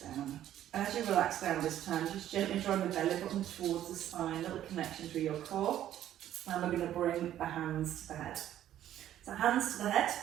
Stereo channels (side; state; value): left; quieter; 11.8 dB